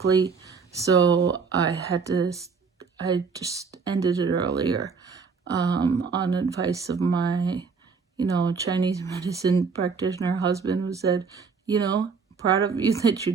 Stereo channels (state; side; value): quieter; left; 5.3 dB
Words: so I just ended it earlier on advice of my Chinese medicine practitioner husband, who said, proud of you that you